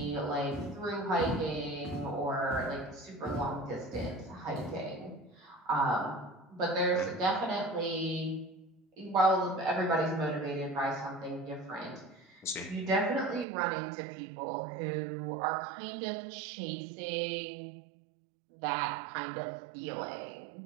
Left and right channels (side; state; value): left; drops out; at 13.5 s